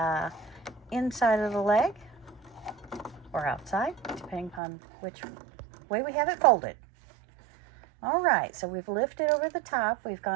inside of the leg, or outside, depending upon which way we have it folded. All right, so we've lifted over the top. We've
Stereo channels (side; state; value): left; drops out; at 4.6 s